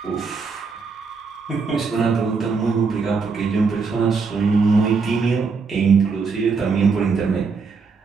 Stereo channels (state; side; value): quieter; left; 4.8 dB